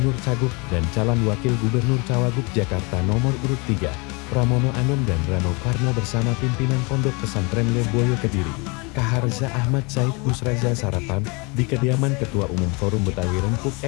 Cagup dan calon wakil gubernur Cawagup Jakarta nomor urut 3, Pramono Anung dan Rano Karno bersama pimpinan Pondok Pesantren Lirboyo Kediri, Kaharza Ahmad Said Busraza sarapan di kediaman Ketua Umum Forum Betawi Rempuk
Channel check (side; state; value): right; quieter; 29.3 dB